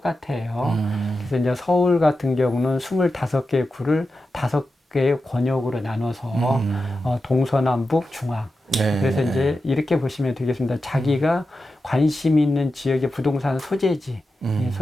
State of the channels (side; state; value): both; normal; correlation 0.91